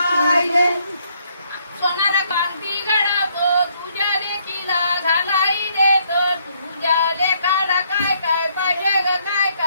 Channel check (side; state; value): both; inverted; correlation -0.70